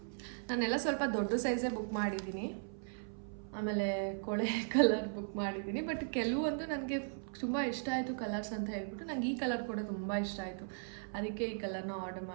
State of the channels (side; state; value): left; silent; 53 dB below the other